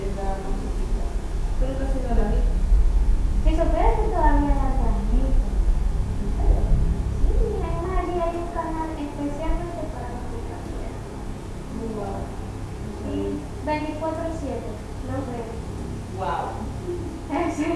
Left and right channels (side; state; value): both; identical; correlation 1.00